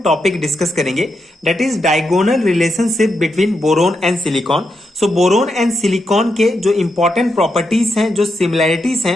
टॉपिक डिस्कस करेंगे, that is diagonal relationship between boron and silicon. So boron and silicon के जो इंपॉर्टेंट प्रॉपर्टीज हैं, जो सिमिलैरिटीज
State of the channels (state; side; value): normal; both; correlation 0.83